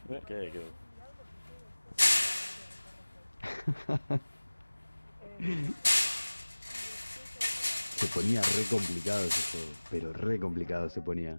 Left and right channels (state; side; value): inverted; both; correlation -1.00